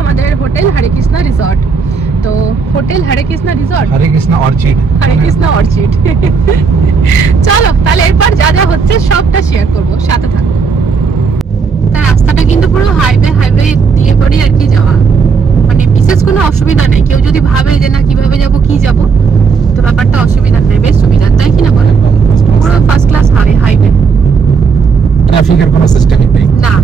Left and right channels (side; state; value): left; quieter; 5.4 dB